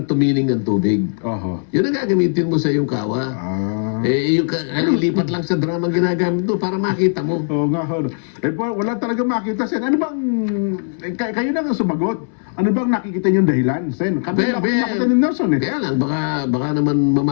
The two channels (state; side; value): silent; right; 67 dB below the other